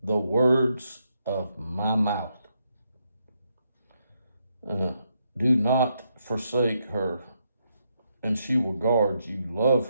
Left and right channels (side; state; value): both; inverted; correlation -0.79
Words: the words of my mouth. Do not forsake her, and she will guard you. Love